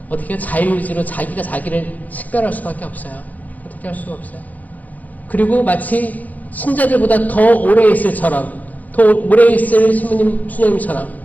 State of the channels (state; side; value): late; right; 0.080 ms